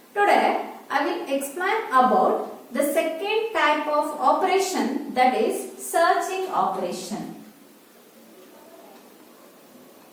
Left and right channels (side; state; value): both; identical; correlation 1.00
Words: Today I will explain about the second type of operation, that is searching operation.